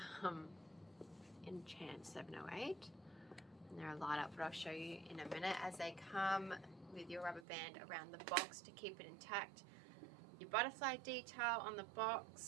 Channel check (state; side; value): drops out; left; at 7.5 s